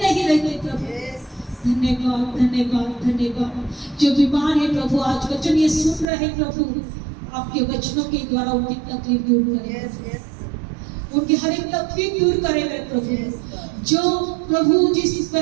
रहते प्रभु। धन्यवाद, धन्यवाद, धन्यवाद। जो बीमार है प्रभु, आज वचन ये सुन रहे प्रभु, आपके वचनों के द्वारा उनकी तकलीफ दूर करें, उनकी हर एक तकलीफ दूर करे मेरे प्रभु। जो प्रभु जिस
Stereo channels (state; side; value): drops out; left; at 6.1 s